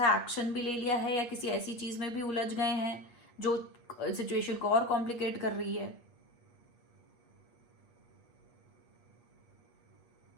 एक्शन भी ले लिया है या किसी ऐसी चीज में भी उलझ गए हैं जो सिचुएशन को और कॉम्प्लिकेट कर रही है।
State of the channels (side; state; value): right; late; 8.4 ms